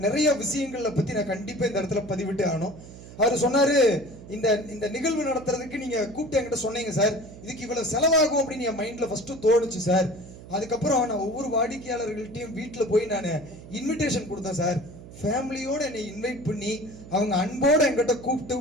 நிறைய விஷயங்களை பத்தி நான் கண்டிப்பா இந்த இடத்துல பதிவிட்டு ஆகணும். அவர் சொன்னாரு, இந்த நிகழ்வு நடத்துறதுக்கு நீங்க கூப்பிட்டு என்கிட்ட சொன்னீங்க சார், இதுக்கு இவ்வளவு செலவாகும் அப்படின்னு என் மைண்ட்ல ஃபர்ஸ்ட் தோணுச்சு சார். அதுக்கப்புறம் நான் ஒவ்வொரு வாடிக்கையாளர்கள்ட்டையும் வீட்டில் போய் நான் இன்விடேஷன் கொடுத்தேன் சார். ஃபேமிலியோட என்னை இன்வைட் பண்ணி அவங்க அன்போட என்கிட்ட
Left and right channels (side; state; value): right; noise; hum, 16 dB below the sound